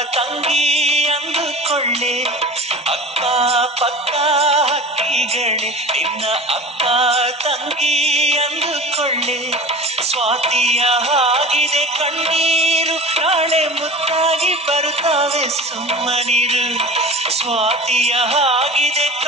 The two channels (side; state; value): both; normal; correlation 0.36